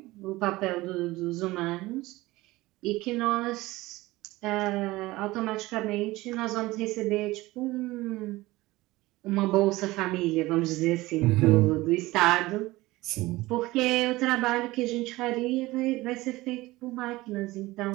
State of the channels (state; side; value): quieter; left; 19.3 dB